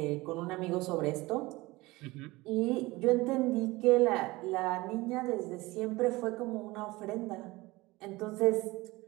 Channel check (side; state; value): left; quieter; 21.1 dB